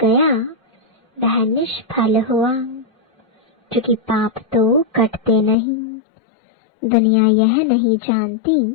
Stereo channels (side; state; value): right; drops out; at 5.6 s